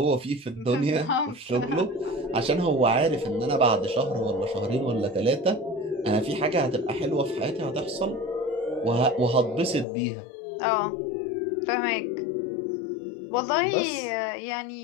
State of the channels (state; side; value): drops out; right; at 9.9 s